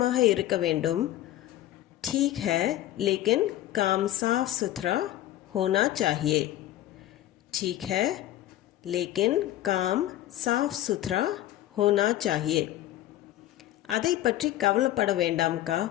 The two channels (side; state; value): right; quieter; 14.0 dB